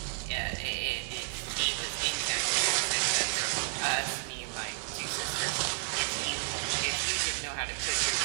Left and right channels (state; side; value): silent; left; digital silence